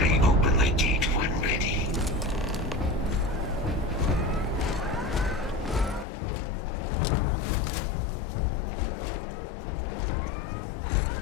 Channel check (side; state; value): right; drops out; at 6.1 s